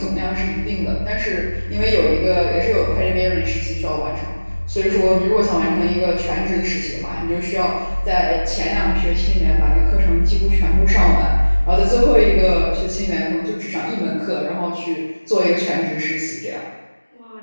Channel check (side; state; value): both; inverted; correlation -1.00